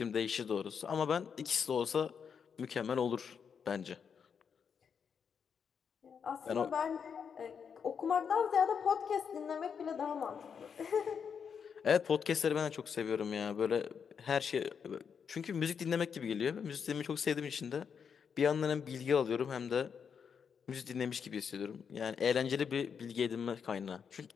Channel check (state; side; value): quieter; right; 6.8 dB